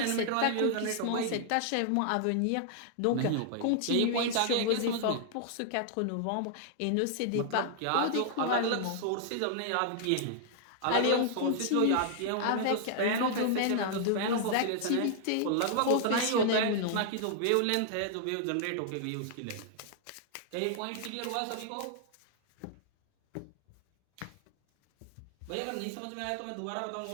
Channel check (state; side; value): different; both; correlation -0.01